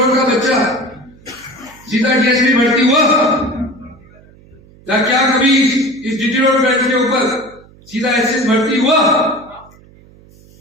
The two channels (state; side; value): noise; right; hum, 26 dB below the sound